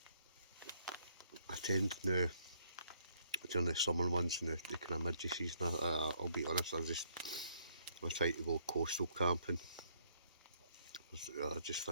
I tend now during the summer months and the kind of midge season. I'll be honest, I try to go coastal camping. I just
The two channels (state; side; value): inverted; both; correlation -0.67